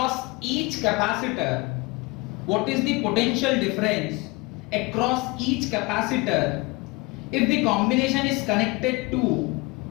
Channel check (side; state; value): right; quieter; 24.7 dB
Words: each capacitor? What is the potential difference across each capacitor if the combination is connected to